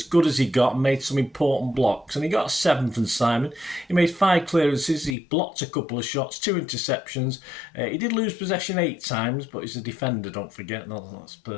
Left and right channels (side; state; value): right; drops out; at 5.2 s